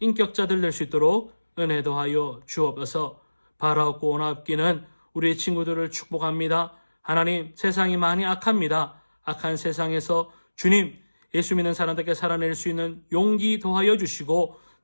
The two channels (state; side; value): inverted; both; correlation -1.00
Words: 인격자들 될 수 있도록 은혜 더하여 주옵소서. 바라옵고 원합기는 우리 친구들을 축복합니다. 하나님, 세상이 많이 악합니다. 악한 세상에서 주님, 예수 믿는 사람들께 살아낼 수 있는 용기 더하여 주시고